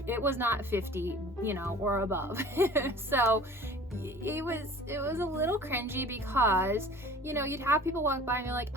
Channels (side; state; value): both; normal; correlation 0.45